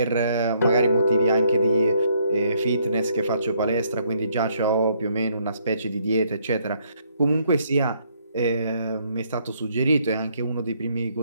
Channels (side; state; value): both; inverted; correlation -0.69